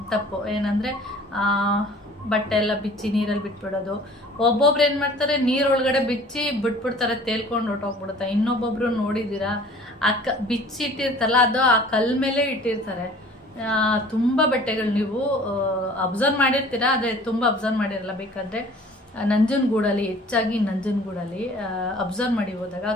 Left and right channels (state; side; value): normal; both; correlation 0.49